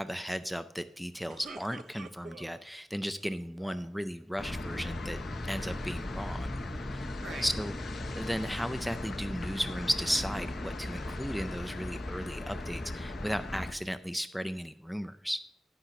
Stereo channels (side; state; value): both; normal; correlation 0.96